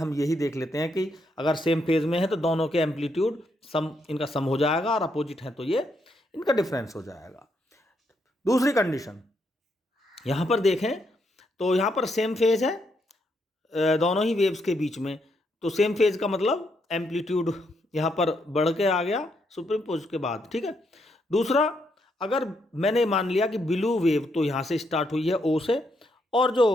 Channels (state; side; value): normal; both; correlation 0.77